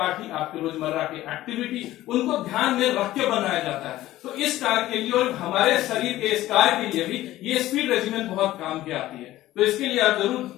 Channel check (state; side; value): quieter; right; 15.3 dB